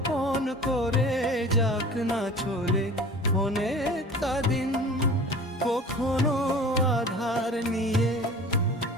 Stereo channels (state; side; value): normal; both; correlation 0.41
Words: করে যাক না চলে অনেকটা দিন, কখনো আধার নিয়ে